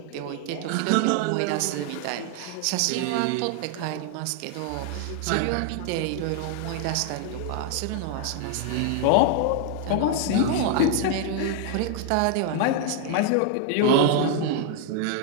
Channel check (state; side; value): different; both; correlation 0.00